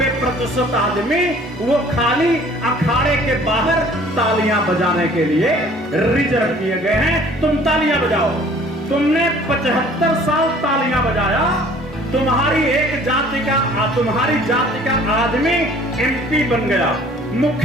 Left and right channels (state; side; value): normal; both; correlation 0.53